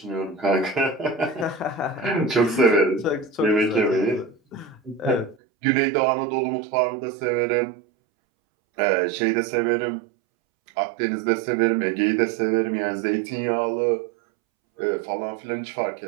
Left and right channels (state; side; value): drops out; left; at 5.4 s